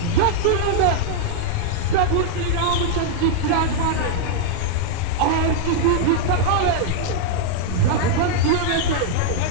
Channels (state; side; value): different; both; correlation -0.01